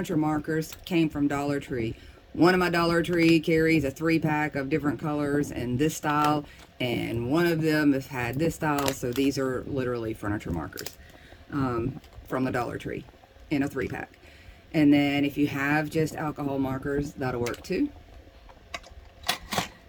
markers came from Dollar Tree. One of my Dollar Tree carries a 3-pack of different colors and this style, and one of them has had this style, so these are literally furniture markers from the Dollar Tree in a 3-pack. And then if you have just alcohol markers, that'll work too.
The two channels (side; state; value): both; identical; correlation 1.00